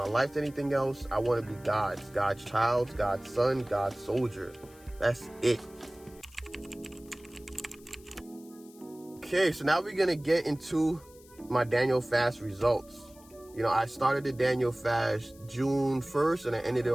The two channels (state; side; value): noise; left; hiss, 25 dB below the sound